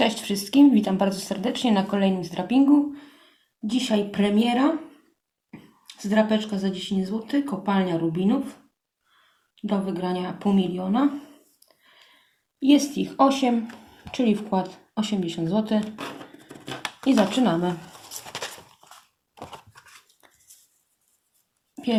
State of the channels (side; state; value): both; identical; correlation 1.00